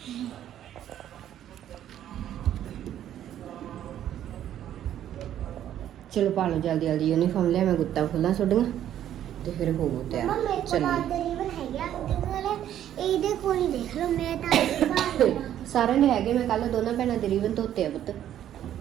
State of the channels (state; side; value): quieter; left; 11.1 dB